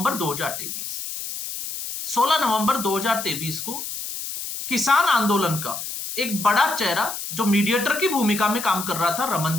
2023। 16 नवंबर 2023 को किसान आंदोलन का एक बड़ा चेहरा जो मीडिएटर की भूमिका में काम कर रहा था,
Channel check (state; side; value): noise; left; hiss, 7 dB below the sound